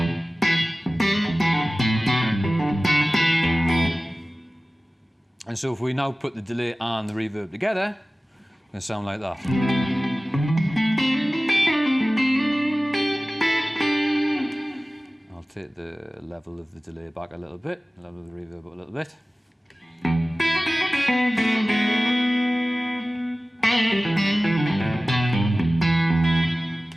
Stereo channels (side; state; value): both; normal; correlation 0.97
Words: And so if we now put the delay and the reverb together, it's going to sound like that. I'll take the level of the delay back a little bit, the level of the reverb up a little bit.